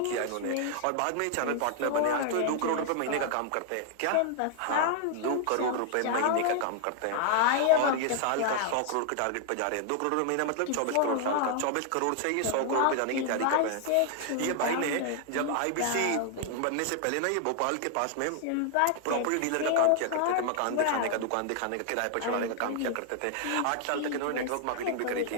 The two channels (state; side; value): different; both; correlation 0.00